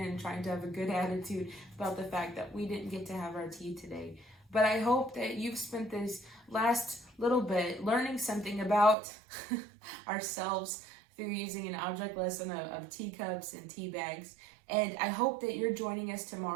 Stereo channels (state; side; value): drops out; left; at 9.0 s